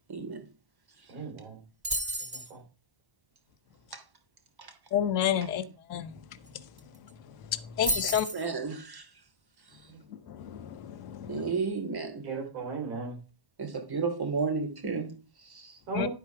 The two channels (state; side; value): late; left; 1.1 ms